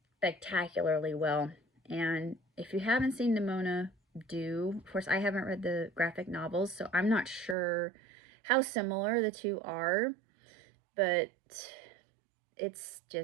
well. And if you haven't seen Nimona, do. Of course, I haven't read the graphic novels, so I'm not sure how similar the two are, but it's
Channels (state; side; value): drops out; left; at 7.6 s